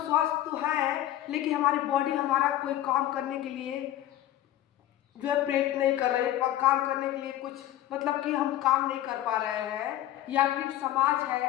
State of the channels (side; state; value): right; quieter; 13.4 dB